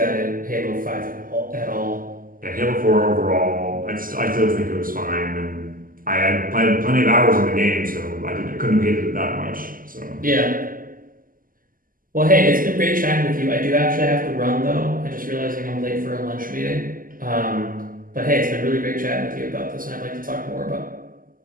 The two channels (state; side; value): late; left; 0.41 ms